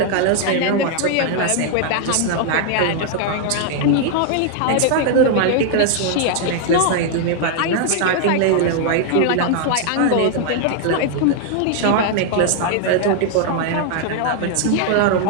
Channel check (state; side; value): different; both; correlation 0.00